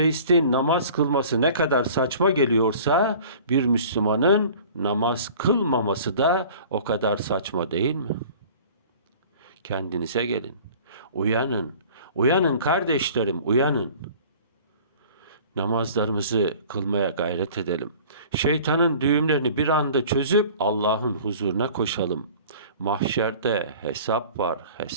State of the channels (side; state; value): both; inverted; correlation -0.45